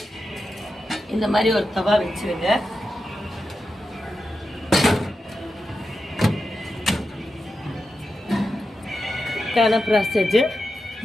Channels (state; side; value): normal; both; correlation 0.89